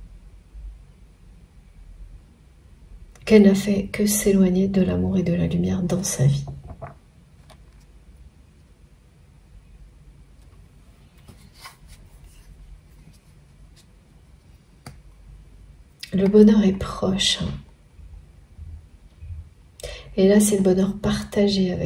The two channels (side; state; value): both; identical; correlation 1.00